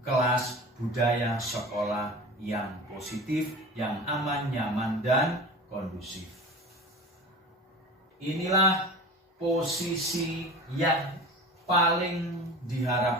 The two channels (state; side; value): normal; both; correlation 0.35